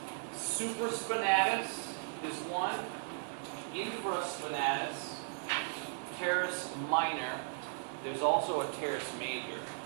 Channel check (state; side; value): silent; left; digital silence